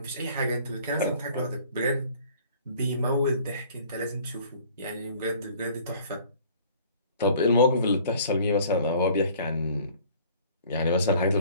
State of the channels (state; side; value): inverted; both; correlation -0.53